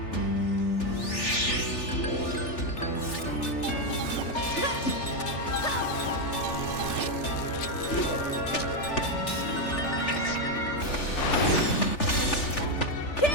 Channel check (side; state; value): right; late; 3.4 ms